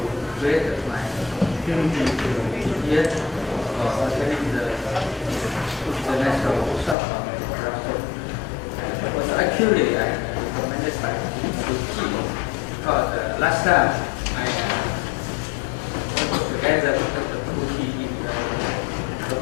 created my opportunity to be here for attending the national workshop on production. It was actually recommended by the team because last time I worked together with the community in the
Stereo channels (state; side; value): drops out; right; at 7.0 s